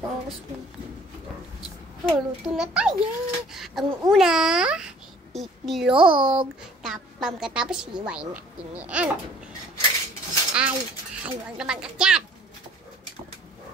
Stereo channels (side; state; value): both; normal; correlation 0.54